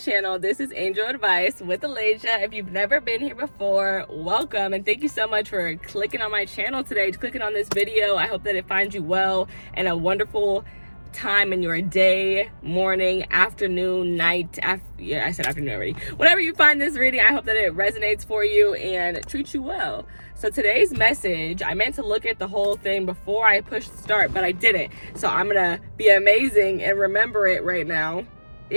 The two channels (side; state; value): both; inverted; correlation -1.00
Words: This is Angel Advice with Elijah. If you've never been here before, welcome, and thank you so much for clicking on my channel today, clicking on this video. I hope that it finds you well and a wonderful time in your day, morning, afternoon, night. I said afternoon already. Whenever you find this reading, I hope that it resonates for you and treats you well. So today's message, I meant to look at the whole thing before I pushed start, but I didn't. So I'm gonna be amazing and remember it right now.